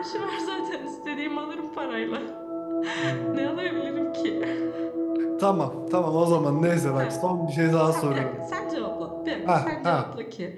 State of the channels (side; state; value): both; identical; correlation 1.00